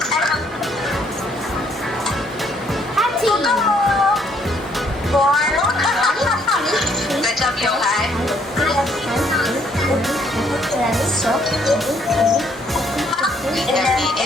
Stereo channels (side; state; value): both; normal; correlation 0.67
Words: Good job, Johan.